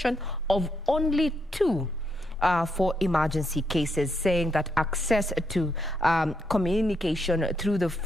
of only 2 for emergency cases, saying that access to communication through the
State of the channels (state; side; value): normal; both; correlation 0.79